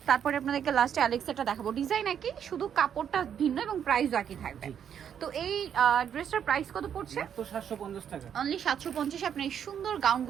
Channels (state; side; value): quieter; left; 8.6 dB